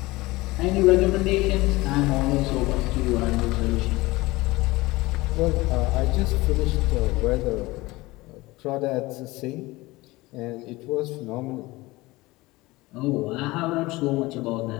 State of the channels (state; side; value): quieter; right; 20.7 dB